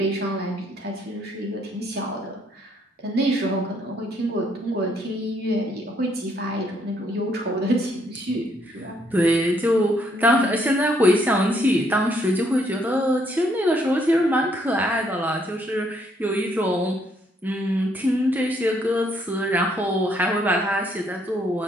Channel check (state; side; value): normal; both; correlation 0.70